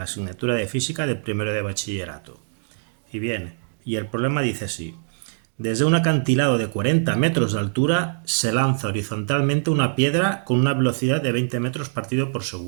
asignatura de física del primero de bachillerato. Y bien, y el problema dice así. Desde un acantilado de 40 metros de altura se lanza horizontalmente una piedra con una velocidad de 20 metros partido por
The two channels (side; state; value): left; silent; digital silence